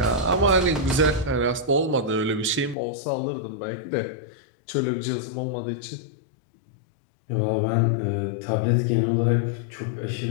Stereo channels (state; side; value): drops out; right; at 2.8 s